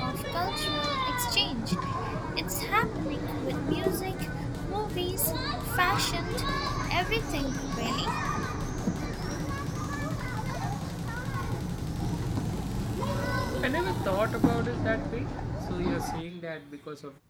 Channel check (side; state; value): both; identical; correlation 1.00